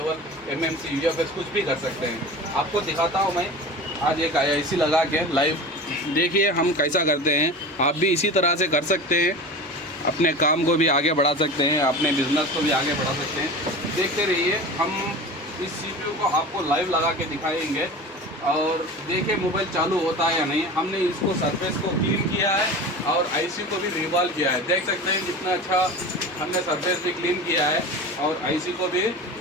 MMC, UFS कुछ भी कर सकते हैं। आपको दिखाता हूँ मैं आज एक आईसी लगा के लाइव। देखिए हम कैसा करते हैं, आप भी इसी तरह से कर सकते हैं। अपने काम को भी आगे बढ़ा सकते हैं, अपने बिजनेस को भी आगे बढ़ा सकते हैं। देखते रहिए, हम इस सीपीयू को आपको लाइव लगा के दिखाएंगे और देखिए मोबाइल चालू होता है या नहीं। हमने इसको सरफेस को क्लीन किया है और आईसी को भी रिवॉल्व किया है। देख सकते हैं कितना अच्छा हमने सरफेस भी क्लीन किया है और आईसी को भी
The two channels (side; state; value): both; normal; correlation 0.33